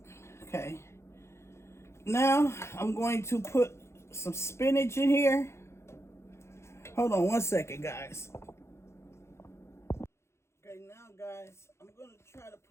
Okay. Now, I'm going to put some spinach in here. Hold on one second, guys. Okay, now, guys, I'm going to try to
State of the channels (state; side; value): late; right; 0.13 ms